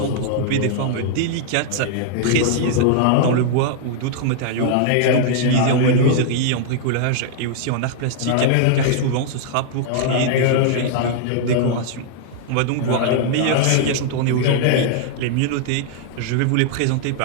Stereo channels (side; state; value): both; different; correlation -0.01